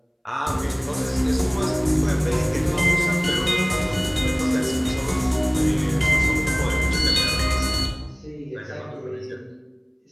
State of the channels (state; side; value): identical; both; correlation 1.00